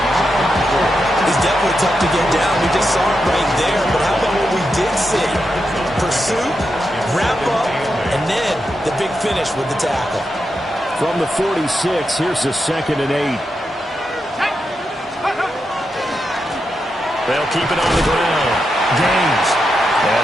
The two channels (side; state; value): both; normal; correlation 0.86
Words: He's definitely tough to get down. We just saw it right there. But how about what we did see? Pursuit, wrap up, and then the big finish with the tackle. From the 46, here's the 2nd and 8. They'll keep it on the ground. Gaines. And